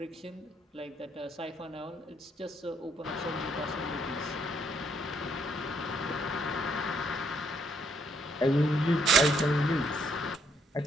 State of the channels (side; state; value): both; normal; correlation 0.71